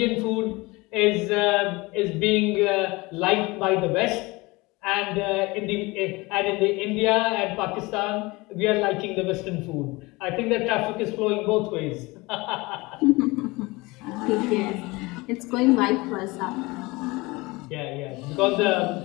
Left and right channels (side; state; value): right; quieter; 23.2 dB